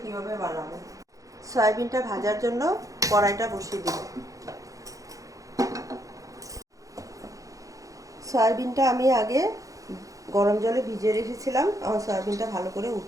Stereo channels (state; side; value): late; left; 0.16 ms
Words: কিভাবে বানাবো। সয়াবিনটা ভাজার জন্য কড়াইটা বসিয়ে দেব। সয়াবিনটা আমি আগে গরম জলে ভিজিয়ে রেখেছিলাম, আমার সয়াবিনটা ভালো করে